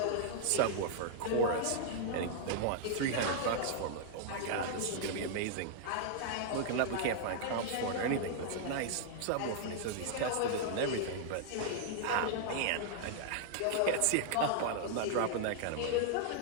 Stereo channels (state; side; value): different; both; correlation -0.01